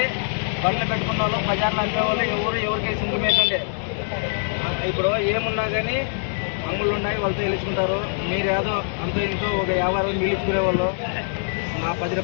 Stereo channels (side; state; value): right; silent; digital silence